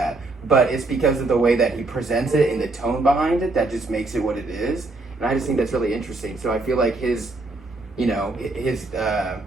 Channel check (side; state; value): left; quieter; 3.2 dB